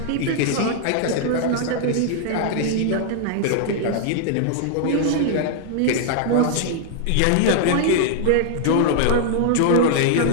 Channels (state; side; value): different; both; correlation 0.00